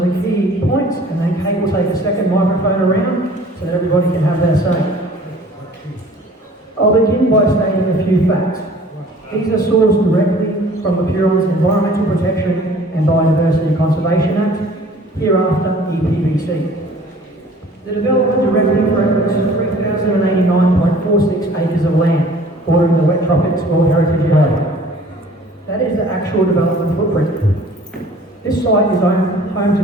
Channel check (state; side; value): normal; both; correlation 0.50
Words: key points and then Kate will take a second microphone around so that everybody can have their say. I'll begin by stating a few facts. These are sourced directly from the Huron's Environmental Protection and Biodiversity Conservation Act, hereafter EPBC. The development directly threatens 3,089.46 acres of land bordering the Wet Tropics World Heritage Area. That is the actual development footprint. This site is home